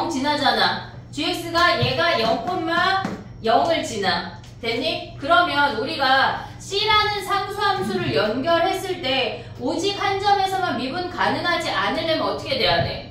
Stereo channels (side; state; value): both; identical; correlation 1.00